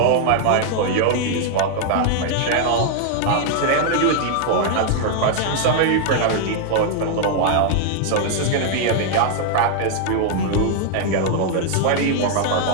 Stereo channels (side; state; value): both; different; correlation 0.00